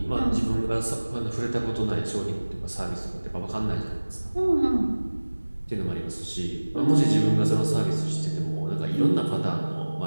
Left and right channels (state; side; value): inverted; both; correlation -1.00